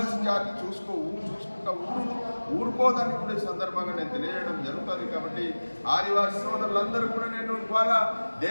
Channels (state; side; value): inverted; both; correlation -1.00